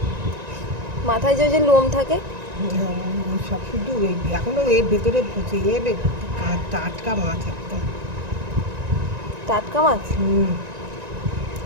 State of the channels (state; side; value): late; left; 1.9 ms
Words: মাথায় যে লোম থাকে। ওই সব শুধু ওই এখনও এর ভেতরে পচে যাবে। টাটকা মাছ একদম। টাটকা মাছ।